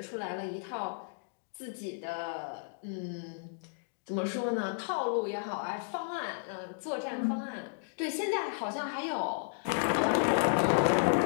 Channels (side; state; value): right; silent; digital silence